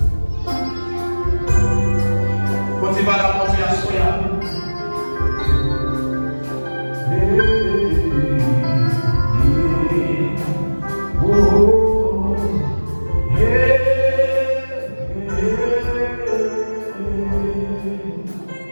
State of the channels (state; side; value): inverted; both; correlation -1.00